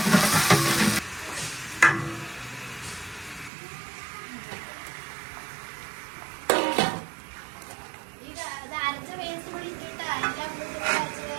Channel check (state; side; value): drops out; left; at 3.5 s